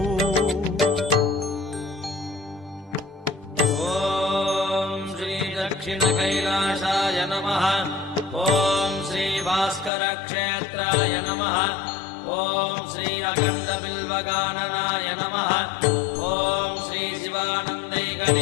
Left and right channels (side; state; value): right; drops out; at 9.9 s